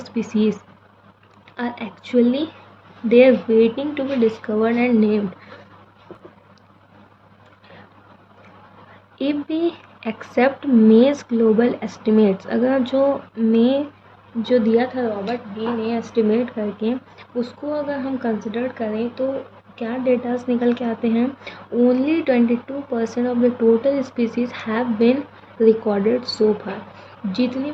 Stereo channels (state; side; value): identical; both; correlation 1.00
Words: are actually there waiting to be discovered and named. If we accept May's global estimates, अगर जो दिया था रॉबर्ट बी ने एस्टिमेट करके, उसको अगर हम कंसिडर करें तो क्या डेटास निकल के आते हैं, only 22% of the total species have been recorded so far. जितनी